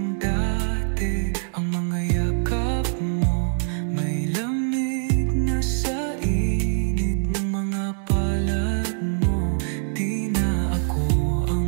dati ang mga yakap mo, may lamig na sa init ng mga palad mo. Di na ako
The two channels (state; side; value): silent; left; digital silence